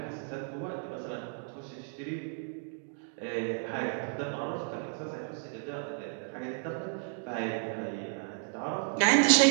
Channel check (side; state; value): left; silent; 56 dB below the other